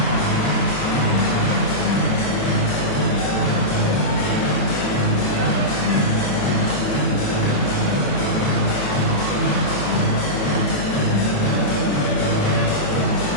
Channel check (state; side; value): late; right; 28 ms